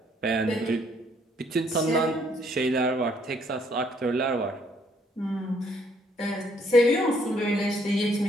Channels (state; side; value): normal; both; correlation 0.66